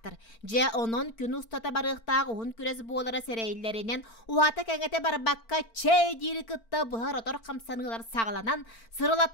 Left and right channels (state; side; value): late; right; 4.4 ms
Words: Жа онын күн ұстата барықтақ ұғын күрес болара сәрәйлерінен, уата кәңете барбаққа чай дейірі күтті бұғар отор қамсанығылар сағаланан,